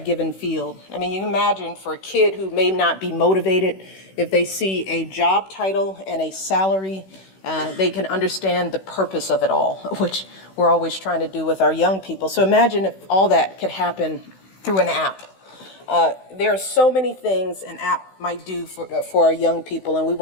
given field. I mean, you can imagine for a kid who may not be motivated, if they see a job title and a salary, they can understand the purpose of it all, which we're always trying to do with our young people. So imagine if all that could happen through an app. There are so many things an app might do for our young people, and we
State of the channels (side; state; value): right; late; 16 ms